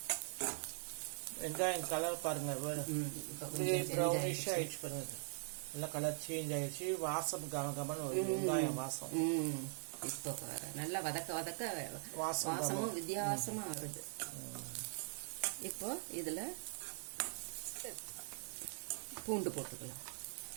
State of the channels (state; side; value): silent; left; digital silence